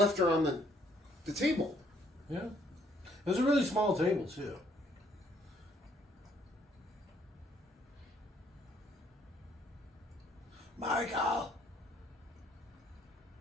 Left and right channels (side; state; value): both; normal; correlation 0.65